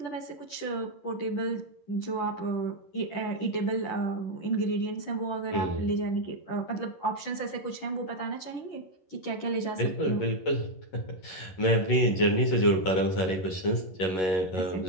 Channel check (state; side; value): late; right; 11 ms